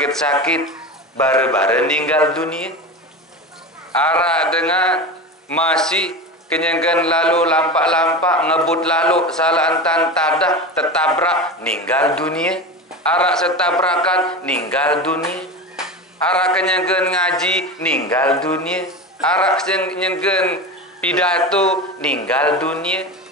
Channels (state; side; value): normal; both; correlation 0.26